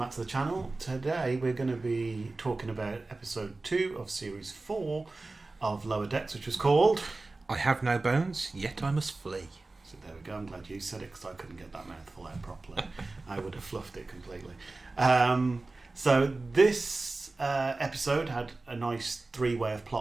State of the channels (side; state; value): left; quieter; 3.3 dB